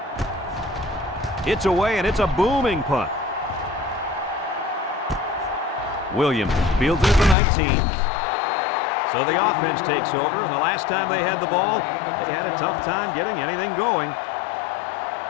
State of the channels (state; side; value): drops out; right; at 7.4 s